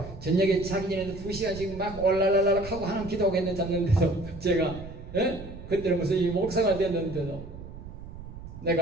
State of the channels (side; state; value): right; noise; rumble, 13 dB below the sound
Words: 저녁에 자기 전에도 2시간씩 막 올랄랄랄 하고 하나님 기도하고 했는데 잤는데도 제가 예? 그때는 무슨 이 목사가 됐는데도